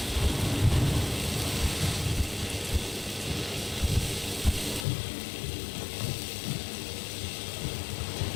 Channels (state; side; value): drops out; right; at 4.9 s